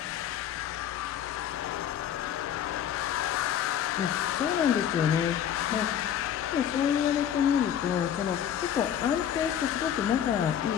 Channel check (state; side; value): quieter; right; 9.6 dB